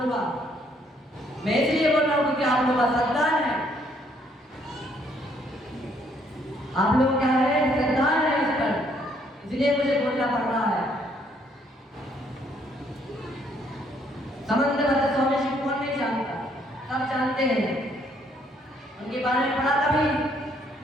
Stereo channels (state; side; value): normal; both; correlation 0.67